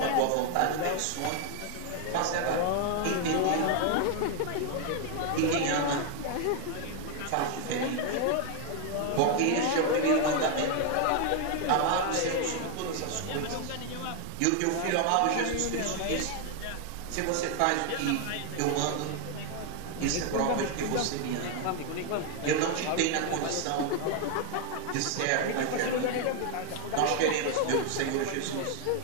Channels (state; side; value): different; both; correlation 0.00